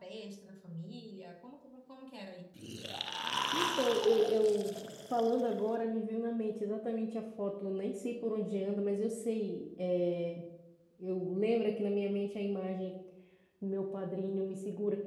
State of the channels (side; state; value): both; identical; correlation 1.00